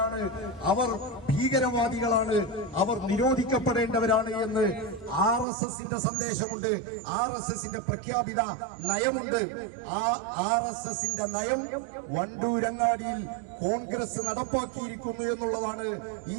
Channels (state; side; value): drops out; left; at 5.5 s